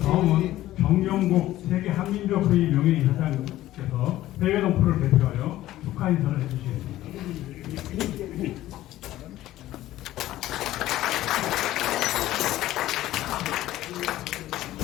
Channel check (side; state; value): right; quieter; 14.8 dB